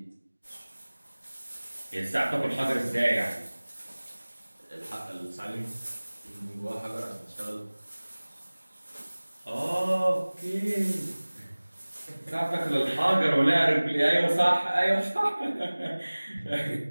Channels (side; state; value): both; inverted; correlation -1.00